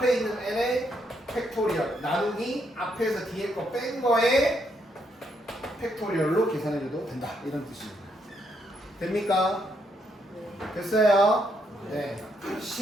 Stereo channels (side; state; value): both; normal; correlation 0.75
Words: 있는 n의 팩토리얼 나누기 앞에서 뒤에 거 뺀 거에 팩토리얼로 계산해줘도 된다. 이런 뜻입니다. 됩니까? 됐어요? 네.